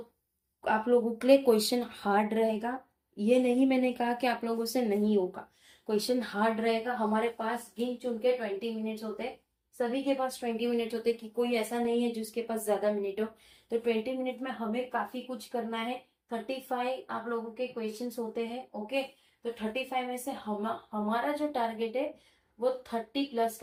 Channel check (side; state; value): both; identical; correlation 1.00